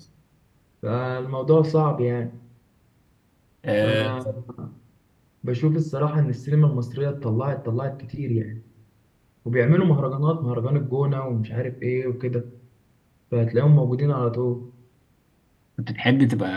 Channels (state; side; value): identical; both; correlation 1.00